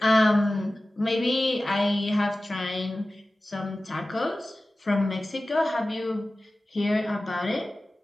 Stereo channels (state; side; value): normal; both; correlation 0.96